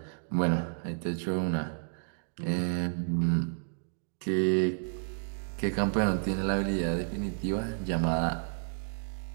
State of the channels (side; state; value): left; silent; digital silence